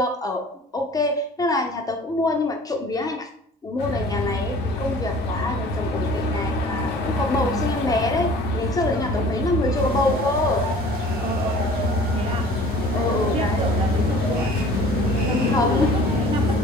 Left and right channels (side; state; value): both; normal; correlation 0.47